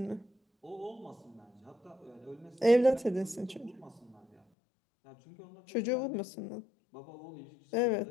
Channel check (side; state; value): right; drops out; at 4.4 s